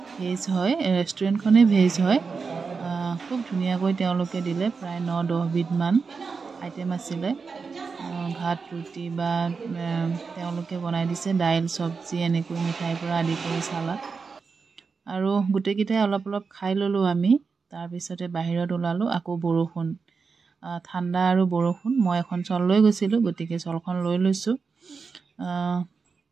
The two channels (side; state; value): left; quieter; 5.0 dB